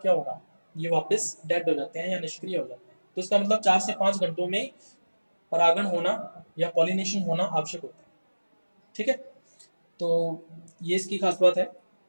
क्या होगा? ये वापस डेड हो जाते हैं या निष्क्रिय हो जाते हैं। तो इसका मतलब 4 से 5 घंटों में परागण होना या पॉलिनेशन होना आवश्यक होता है, ठीक है। तो ये इसकी खास बात है।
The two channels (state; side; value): inverted; both; correlation -1.00